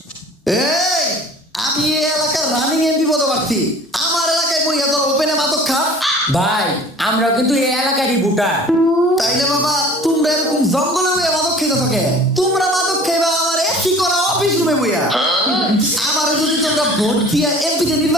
এই আমি এই এলাকার রানিং এমপি পদপ্রার্থী, আমার এলাকায় বইয়া তোর ওপেনে মাদক খা। ভাই আমরা কিন্তু এই এলাকারই ভোটার। তাইলে বাবা তোমরা এরকম জঙ্গলে বইয়া মাদক খেতে থাকে, তোমরা মাদক খাইবা আমার এসি করা অফিস রুমে বইয়া। আমার যদি তোমরা ভোট দিয়া এমপিতে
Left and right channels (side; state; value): both; normal; correlation 0.46